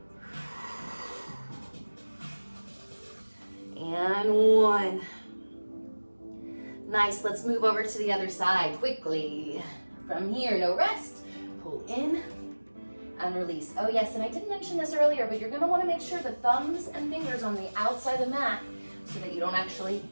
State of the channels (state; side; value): inverted; both; correlation -1.00